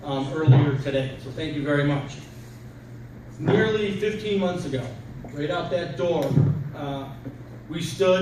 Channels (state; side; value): identical; both; correlation 1.00